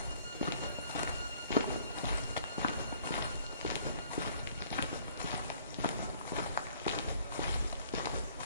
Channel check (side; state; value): both; inverted; correlation -0.60